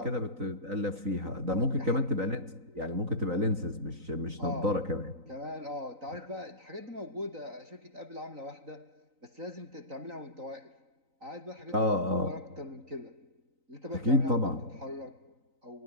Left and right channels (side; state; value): left; late; 3.9 ms